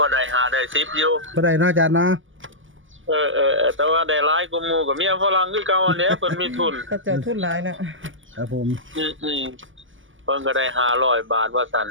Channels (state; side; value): late; left; 0.57 ms